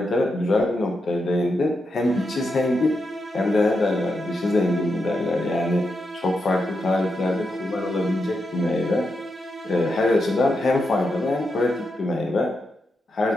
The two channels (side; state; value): both; normal; correlation 0.85